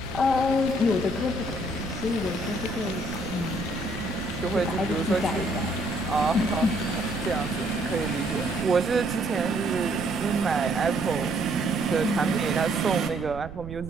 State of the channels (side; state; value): right; noise; rumble, 12 dB below the sound